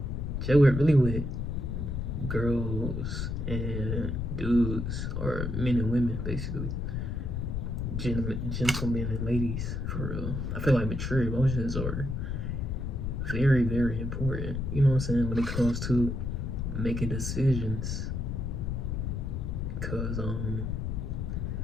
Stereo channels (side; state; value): left; noise; rumble, 2 dB below the sound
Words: Jay work really with girls and dudes, or men and women, basically. Gentlemen and ladies, for real. I feel like mature emotions are very, very important. You know what I'm saying? When it comes to making decisions, because a